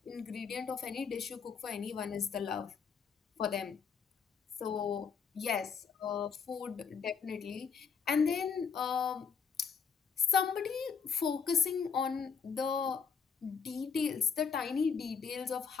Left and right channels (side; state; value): right; quieter; 6.2 dB